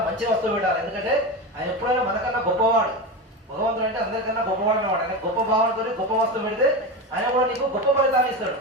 మంచి వస్తువు పెట్టాలి. ఎందుకంటే ఆయన ఎప్పుడైనా మనకన్నా గొప్పవాడు. భగవంతుడు అంటే అందరికన్నా గొప్పవాడు అనమాట. ఆయన గొప్ప భావనతో గొప్ప వస్తువు పెడితే ఆయన కూడా నీకు గొప్ప ఫలితాన్ని ఇస్తాడు.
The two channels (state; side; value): normal; both; correlation 0.21